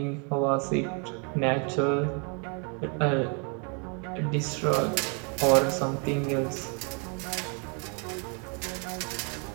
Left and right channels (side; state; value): left; quieter; 37.2 dB